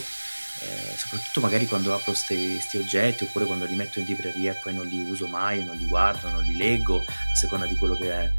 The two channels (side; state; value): both; inverted; correlation -1.00